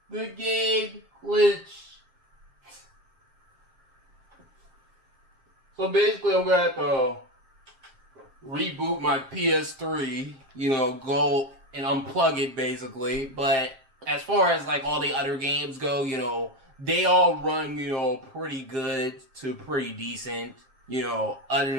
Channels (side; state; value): left; late; 7.5 ms